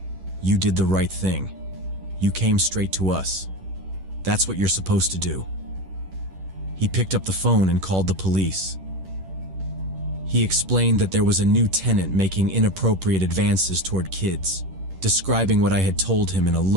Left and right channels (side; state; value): left; late; 11 ms